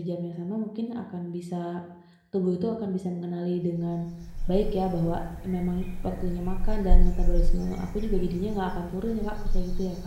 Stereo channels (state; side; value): identical; both; correlation 1.00